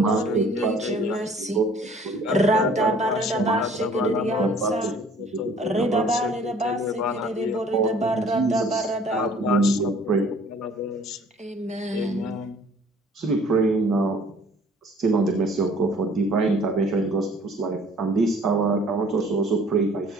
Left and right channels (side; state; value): both; normal; correlation 0.54